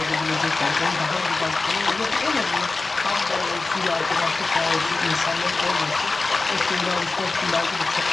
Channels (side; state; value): right; quieter; 3.6 dB